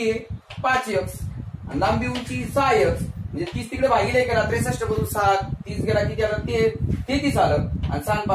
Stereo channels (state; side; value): identical; both; correlation 1.00